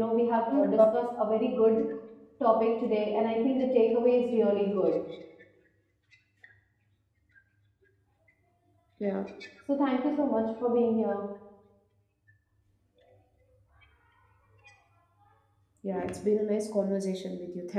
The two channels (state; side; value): identical; both; correlation 1.00